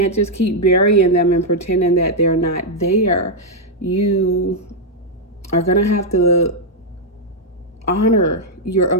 just keep burying them and pretending that they're not there. You are going to have to honor your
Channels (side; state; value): both; normal; correlation -0.02